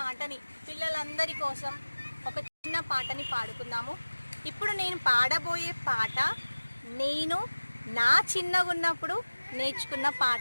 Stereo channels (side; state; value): both; inverted; correlation -1.00